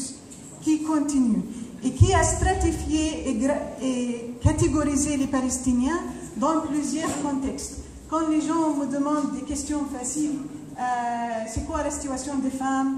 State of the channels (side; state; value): both; identical; correlation 1.00